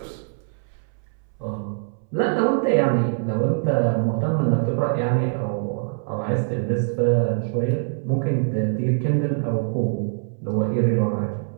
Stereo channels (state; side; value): silent; left; 63 dB below the other